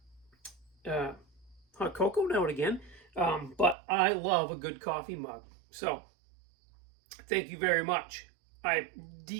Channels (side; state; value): left; drops out; at 3.8 s